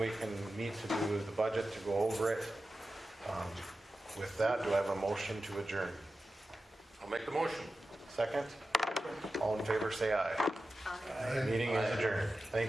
can meet to do the budget, to go over it. With that, do I have a motion to adjourn? I'll make the motion. Second? All in favor, say aye. Meeting is adjourned.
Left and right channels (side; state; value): both; normal; correlation 0.93